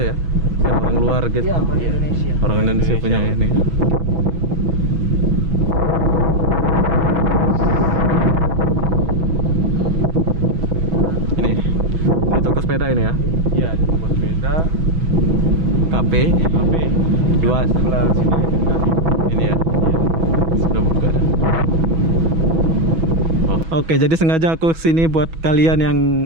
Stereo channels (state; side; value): late; left; 6.2 ms